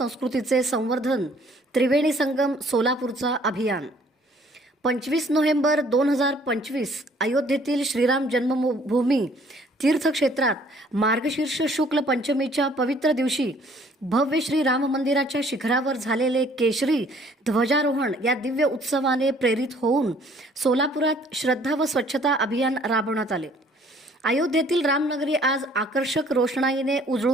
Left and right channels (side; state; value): both; normal; correlation 0.59